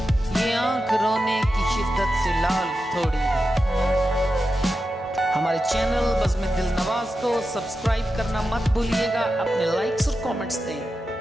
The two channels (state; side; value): normal; both; correlation 0.90